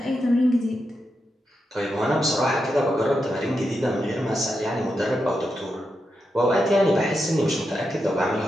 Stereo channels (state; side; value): normal; both; correlation 0.86